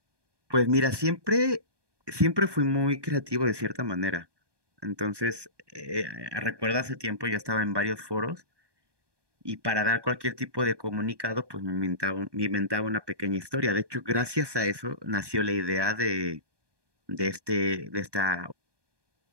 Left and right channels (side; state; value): left; late; 1.2 ms